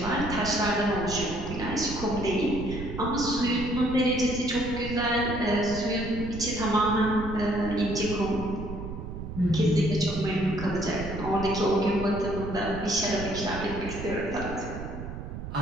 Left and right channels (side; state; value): right; noise; rumble, 8 dB below the sound